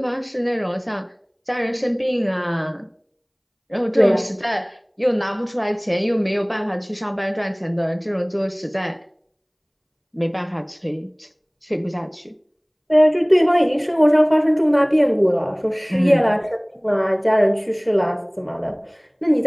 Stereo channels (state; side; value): identical; both; correlation 1.00